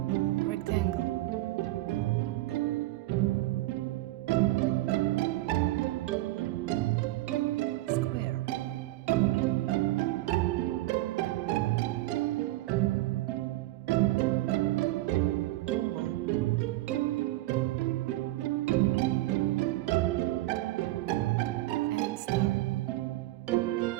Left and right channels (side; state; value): left; quieter; 17.6 dB